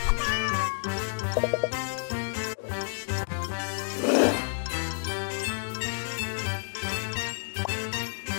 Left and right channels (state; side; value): silent; right; digital silence